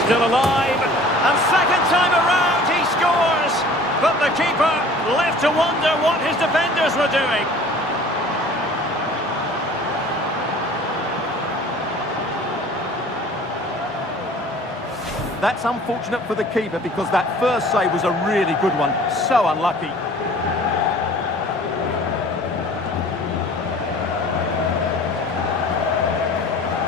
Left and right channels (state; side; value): normal; both; correlation 0.47